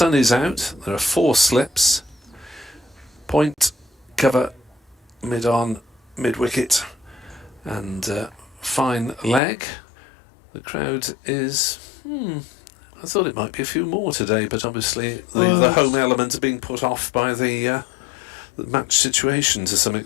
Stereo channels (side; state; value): right; drops out; at 9.4 s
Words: is out. There are 4 slips. Point, cover, mid-on, mid-wicket, and fine leg. The crowd is... I thought it might be a few more today, but obviously the home element is being put off by the match situation to some